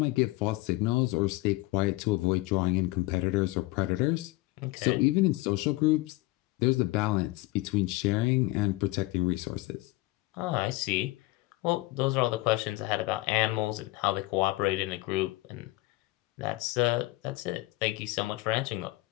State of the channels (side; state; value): right; quieter; 20.4 dB